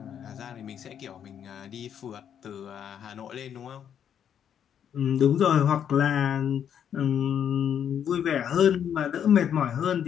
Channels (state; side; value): quieter; right; 8.8 dB